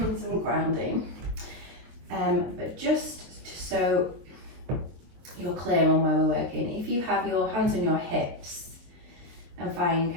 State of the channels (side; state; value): left; late; 23 ms